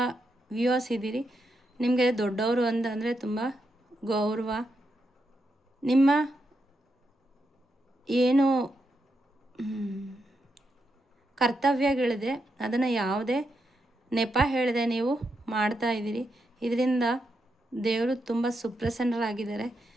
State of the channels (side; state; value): both; normal; correlation 0.83